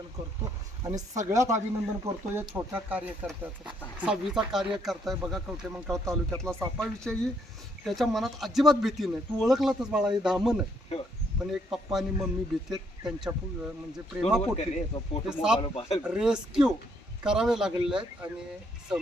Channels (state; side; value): normal; both; correlation 0.70